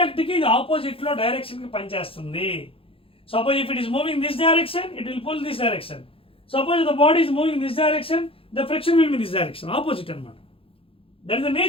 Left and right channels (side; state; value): right; late; 0.27 ms